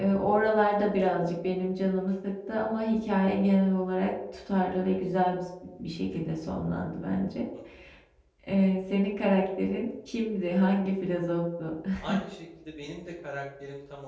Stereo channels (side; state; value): both; identical; correlation 1.00